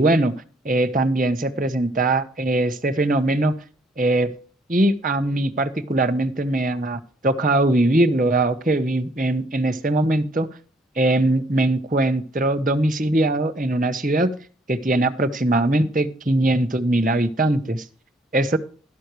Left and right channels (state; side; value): normal; both; correlation 0.65